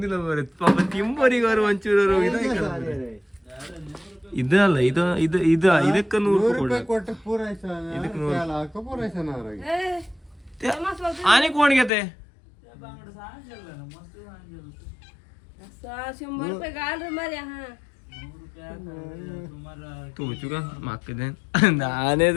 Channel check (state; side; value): drops out; right; at 11.9 s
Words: ಮರೆ ಪಾಪ ತಿಂಬರಿಗೆ ಅವರು ಒಂಚೂರು ಇದಲ್ಲ ಇದು ಇದು ಇದು ಇದಕ್ಕೆ 100 ರೂಪಾಯಿ ಕೊಟ್ಟು ಆನೆ ಕೋಣಿಗೆತೆ ತೂಚುಗ ಮಕ್ಕದೇನ್